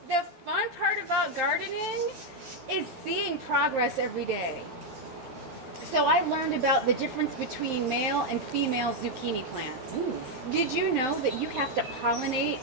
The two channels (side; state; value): left; late; 12 ms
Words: The fun part about gardening is seeing progress every day. So I learned about the difference between male and female zucchini plants. Ooh. Did you know that you have to pollinate